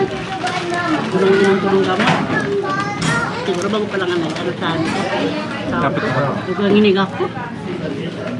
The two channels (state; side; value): identical; both; correlation 1.00